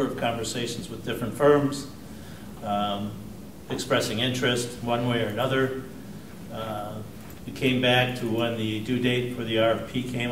of conversations with different firms, expressing interest one way or another. We came back to when the due date for the RFP came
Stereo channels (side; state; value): both; identical; correlation 1.00